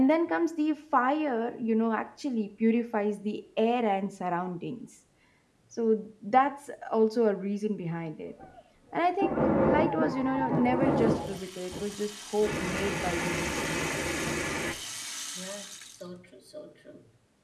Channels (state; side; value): identical; both; correlation 1.00